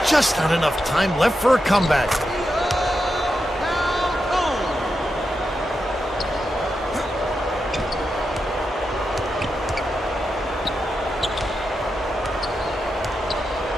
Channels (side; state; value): both; normal; correlation 0.87